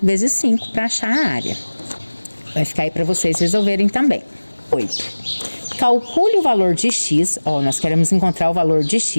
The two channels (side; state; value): both; inverted; correlation -1.00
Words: vezes 5 para achar a área. Vai ficar aí para vocês resolverem também. 8. Calcule o valor de x, ó, nós queremos encontrar o valor de